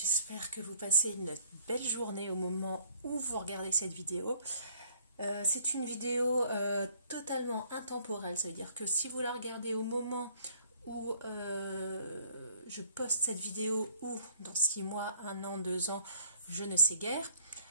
que vous passez une belle journée au moment où vous regardez cette vidéo. C'est une vidéo totalement intemporelle, ça veut dire que si vous la regardez au moment où je poste cette vidéo ou dans 6 mois, 1 an, 2 ans, je ne sais guère,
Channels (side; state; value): both; inverted; correlation -0.61